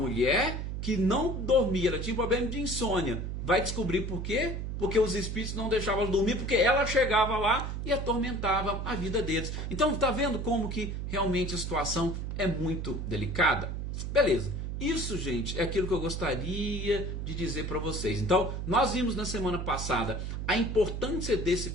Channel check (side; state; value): right; noise; hum, 4 dB below the sound